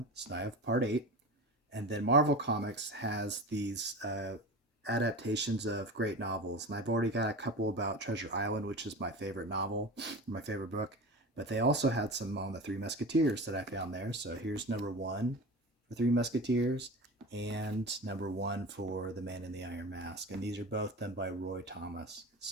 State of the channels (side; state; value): both; normal; correlation 0.30